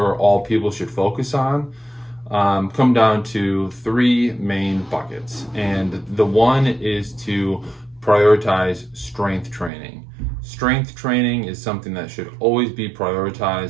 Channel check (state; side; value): drops out; left; at 9.7 s